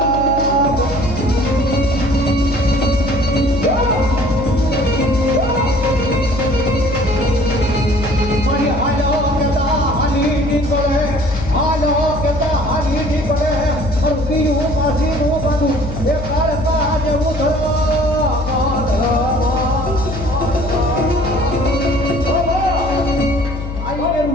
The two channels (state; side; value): noise; left; hum, 8 dB below the sound